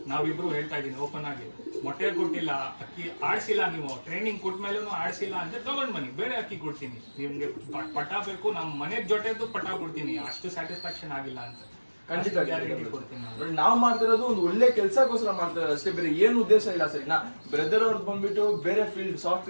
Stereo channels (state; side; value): inverted; both; correlation -1.00